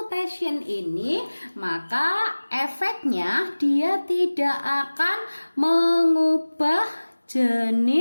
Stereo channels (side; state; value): both; inverted; correlation -1.00